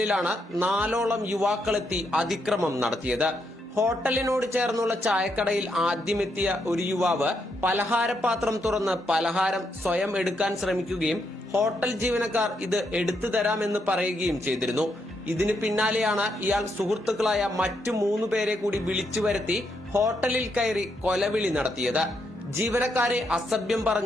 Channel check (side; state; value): both; normal; correlation 0.78